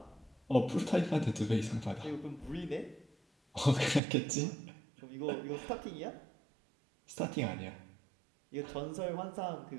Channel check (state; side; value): drops out; left; at 4.0 s